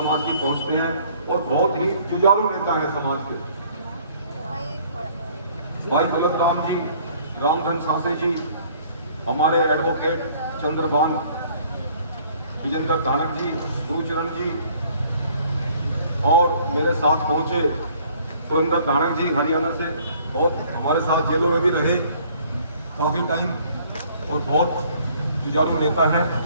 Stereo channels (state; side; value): inverted; both; correlation -0.58